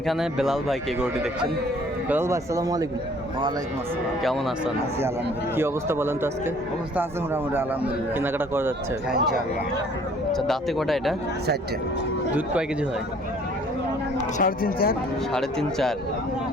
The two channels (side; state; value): both; normal; correlation 0.56